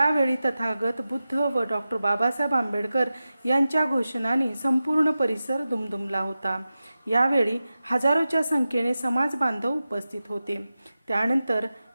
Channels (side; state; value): both; inverted; correlation -0.94